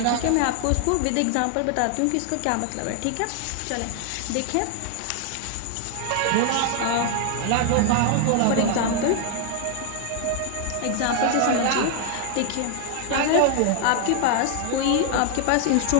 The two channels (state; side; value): different; both; correlation 0.00